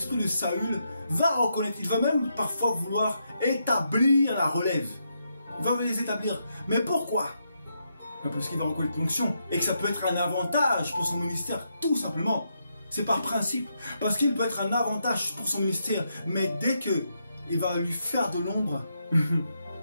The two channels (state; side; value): inverted; both; correlation -0.81